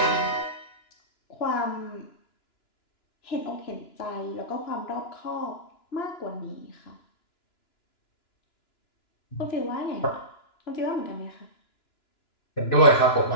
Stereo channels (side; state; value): right; late; 2.9 ms